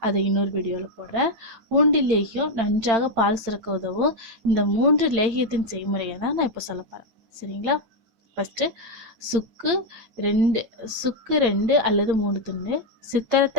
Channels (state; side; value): late; left; 8.8 ms